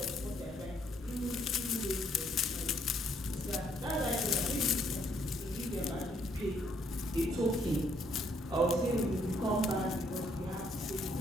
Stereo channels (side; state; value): both; normal; correlation 0.69